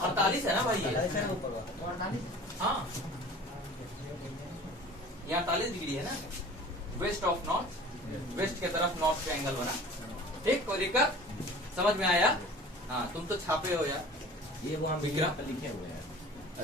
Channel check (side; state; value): both; normal; correlation 0.43